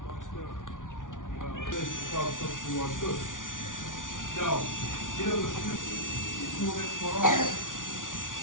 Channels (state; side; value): late; right; 0.88 ms